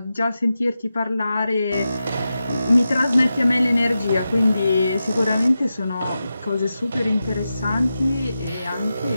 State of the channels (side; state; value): both; inverted; correlation -0.91